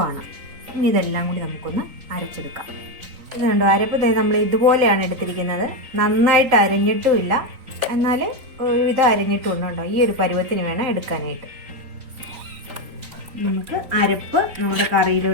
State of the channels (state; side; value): late; left; 3.9 ms